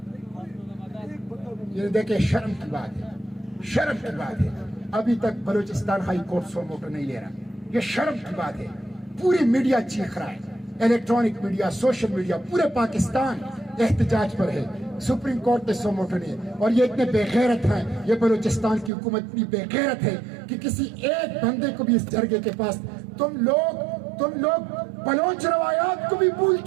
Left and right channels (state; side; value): drops out; left; at 18.9 s